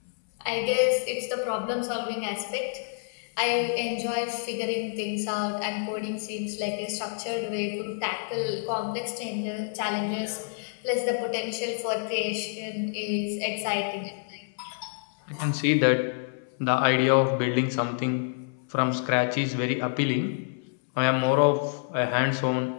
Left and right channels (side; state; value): right; silent; 59 dB below the other